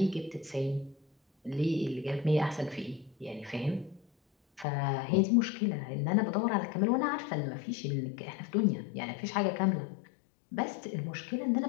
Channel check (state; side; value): drops out; right; at 4.7 s